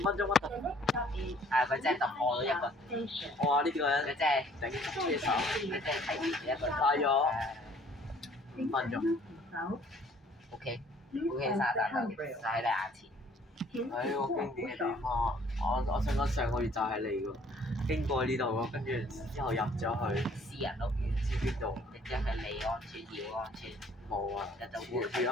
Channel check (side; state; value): both; normal; correlation 0.58